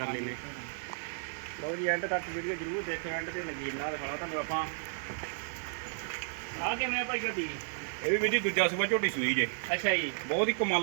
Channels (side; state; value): left; silent; 56 dB below the other